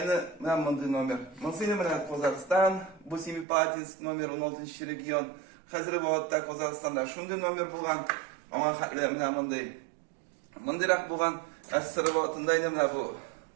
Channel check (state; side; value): drops out; left; at 3.5 s